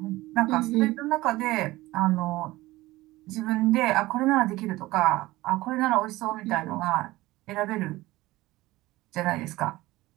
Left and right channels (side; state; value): left; quieter; 18.6 dB